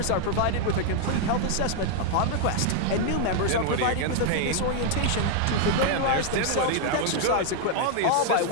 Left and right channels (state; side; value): different; both; correlation 0.00